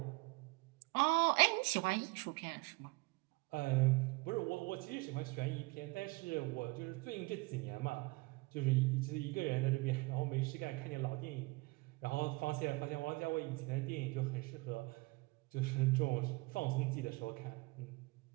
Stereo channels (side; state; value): left; quieter; 25.4 dB